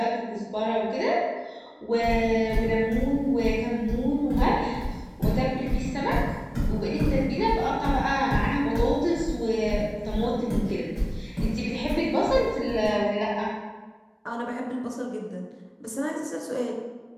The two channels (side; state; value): both; identical; correlation 1.00